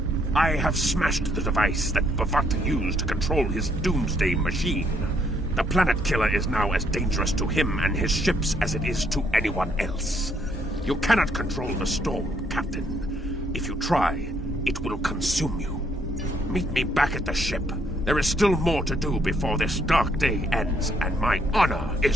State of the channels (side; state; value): both; normal; correlation 0.70